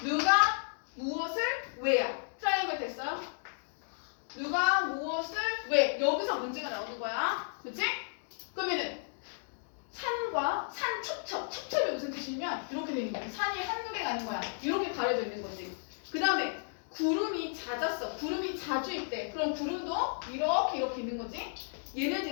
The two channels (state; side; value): silent; right; digital silence